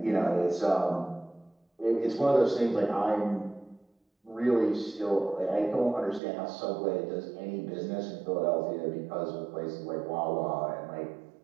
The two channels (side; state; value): left; drops out; at 6.2 s